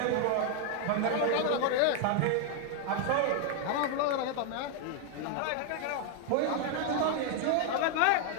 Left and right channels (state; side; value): different; both; correlation 0.00